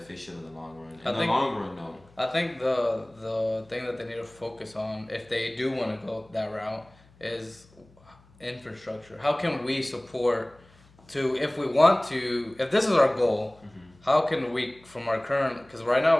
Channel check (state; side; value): noise; left; hum, 28 dB below the sound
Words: in the long run. I In the think- long run, no. I think the thing that they need to focus on, if they do want to go that route, is infrastructure. How can we support if we want to, if this is our goal, how can we, from our current, because right